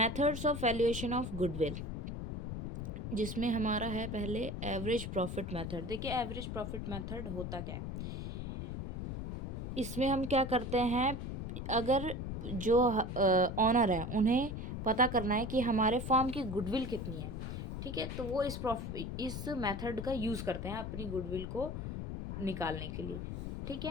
of valuation of goodwill, जिसमें हमारा है पहले एवरेज प्रॉफिट मेथड। देखिए एवरेज प्रॉफिट मेथड होता क्या है। इसमें हम क्या करते हैं, अगर जो ऑनर है उन्हें पता करना है कि हमारे फर्म की गुडविल कितनी है, ठीक है, तो वो इस मेथड का यूज़ करते हैं अपनी गुडविल को निकालने के लिए। ठीक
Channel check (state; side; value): noise; left; rumble, 5 dB below the sound